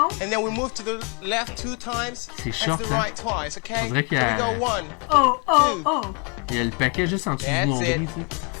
And then we move to the left 2 times. C'est short, and to the right twice, okay? On dirait qu'il y So a... we go 1, Oh, oh, 2. oh. Il y a le paquet juste en dessous du nombril, tu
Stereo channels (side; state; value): right; quieter; 34.2 dB